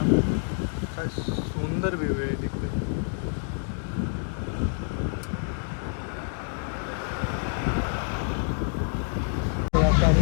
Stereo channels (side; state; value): right; silent; digital silence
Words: काय सुंदर व्ह्यू आहे तिथे. तर आता